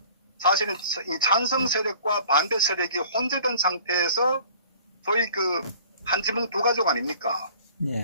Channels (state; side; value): inverted; both; correlation -0.50